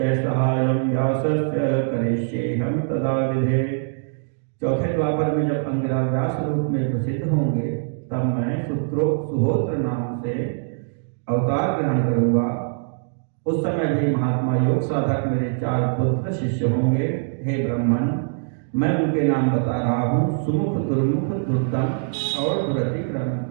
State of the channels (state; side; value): silent; left; digital silence